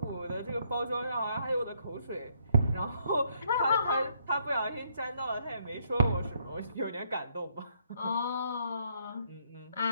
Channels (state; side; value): inverted; both; correlation -0.69